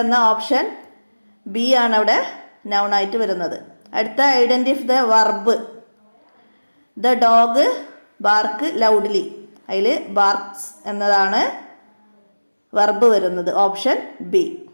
എന്ന ഓപ്ഷൻ ബി ആണ് അവിടെ നൗണായിട്ട് വരുന്നത്. അടുത്ത identify the verb. The dog bark loudly. അതിൽ ബാർക്സ് എന്നതാണ് വർബ് വരുന്നത്. Option B.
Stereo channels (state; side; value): inverted; both; correlation -1.00